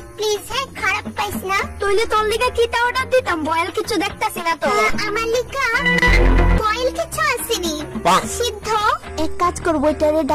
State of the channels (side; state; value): both; identical; correlation 1.00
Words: প্লিজ হ্যাঁ, খারাপ পাইস না। তইলে তোর লিগে কিতা অর্ডার দিতাম? বয়েল কিছু দেখতাছি না তো। আমার লিগা বয়েল কিছু আসেনি, সিদ্ধ। এক কাজ করবো, এটারে